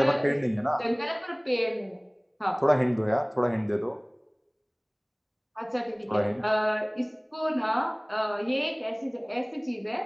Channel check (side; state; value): both; identical; correlation 1.00